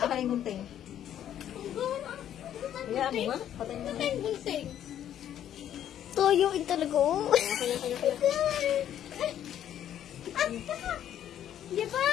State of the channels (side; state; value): right; quieter; 10.6 dB